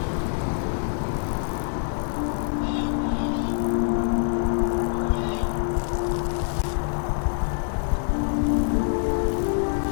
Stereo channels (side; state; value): right; silent; 62 dB below the other